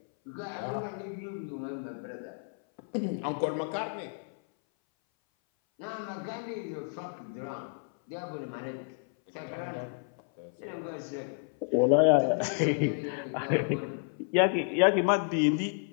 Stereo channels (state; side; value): silent; right; 57 dB below the other